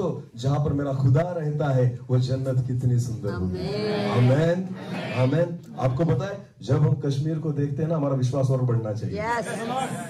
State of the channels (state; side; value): identical; both; correlation 1.00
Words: जहां पर मेरा खुदा रहता है वो जन्नत कितनी सुंदर होगी। आमेन, आमेन। आपको पता है जब हम कश्मीर को देखते हैं ना, हमारा विश्वास और बढ़ना चाहिए।